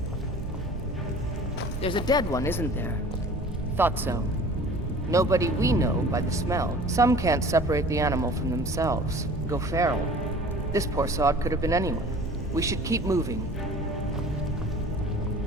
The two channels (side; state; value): both; normal; correlation 0.45